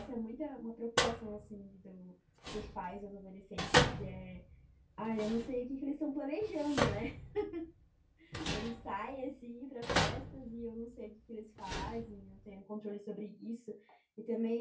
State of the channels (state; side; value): identical; both; correlation 1.00